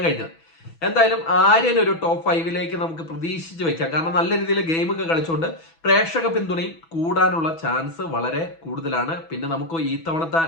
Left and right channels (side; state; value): right; late; 6.1 ms